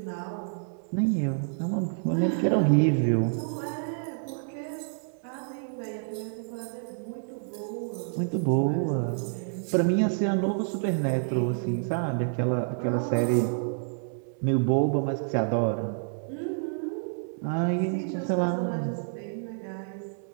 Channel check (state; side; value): silent; left; digital silence